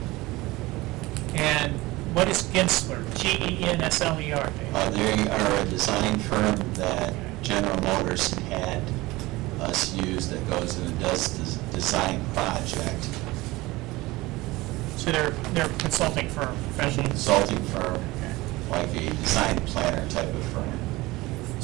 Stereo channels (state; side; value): quieter; left; 20.4 dB